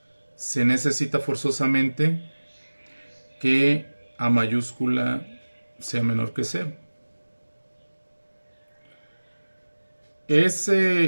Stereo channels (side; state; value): both; inverted; correlation -1.00